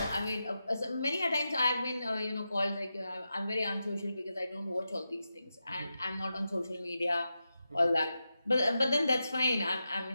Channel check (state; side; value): inverted; both; correlation -0.90